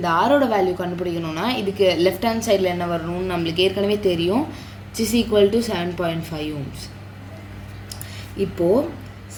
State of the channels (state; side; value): identical; both; correlation 1.00